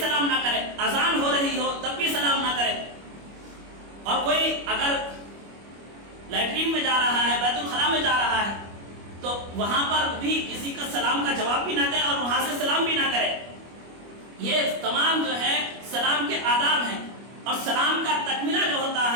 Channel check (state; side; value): late; left; 25 ms